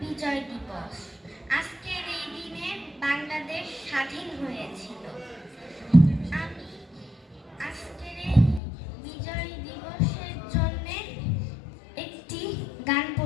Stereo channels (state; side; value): drops out; right; at 8.6 s